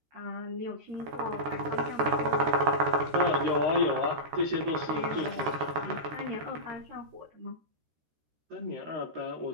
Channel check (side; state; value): left; late; 13 ms